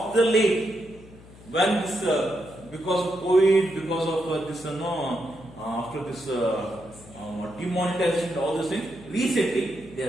the late, when this, because of COVID, because of this, after this demonetization, all these things, recently they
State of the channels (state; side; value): noise; left; hum, 21 dB below the sound